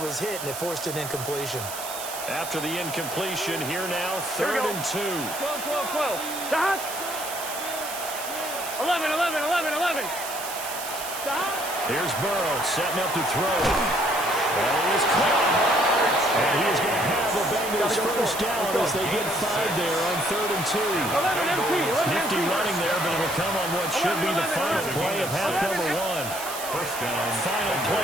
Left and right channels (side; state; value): right; noise; hiss, 8 dB below the sound